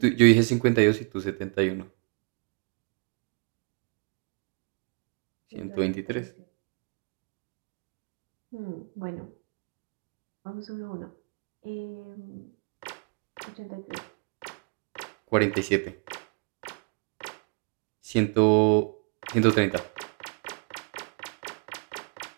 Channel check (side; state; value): left; quieter; 39.6 dB